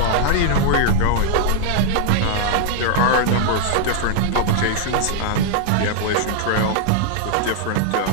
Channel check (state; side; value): different; both; correlation 0.00